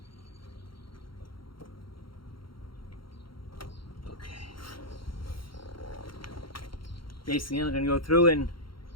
Basically, I'm going to go through and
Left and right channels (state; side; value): late; right; 0.73 ms